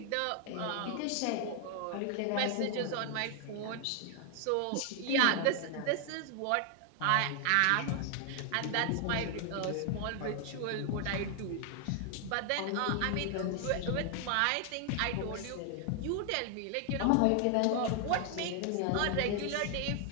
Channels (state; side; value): different; both; correlation 0.00